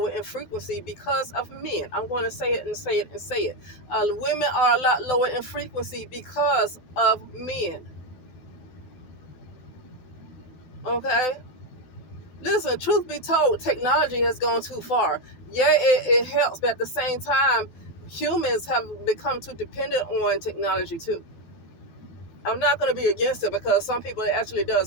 in frequency because of men. I'm going to say it and say it and say it. Women are a lot lower in frequency because of men. Okay? Listen, truth be told, technology has gone too far. Yeah, it helps, but at the same time, humans have become too dependent on technology too. I'm not going to be against it because some people it actually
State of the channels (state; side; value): late; right; 12 ms